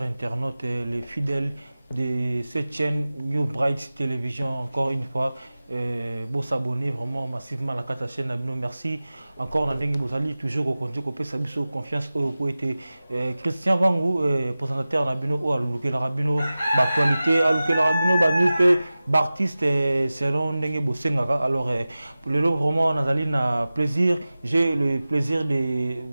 internautes, les fidèles de cette chaîne New Bright Television. Encore une fois, vous s'abonner vraiment massivement à la chaîne. Merci encore. Vous allez toujours au contact, vous confiance au été. Christian Vangou, présentateur Nabino, à l'Ouké Rabino, l'actualité, à l'Ouké Rabino, news, artiste selon Ndenge Bosengaka. Alors, le lot vraiment, Nathalie, plaisir. J'ai le plaisir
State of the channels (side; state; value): both; inverted; correlation -0.96